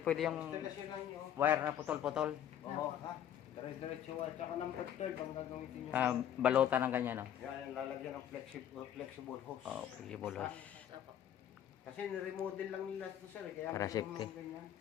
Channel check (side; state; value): right; quieter; 10.4 dB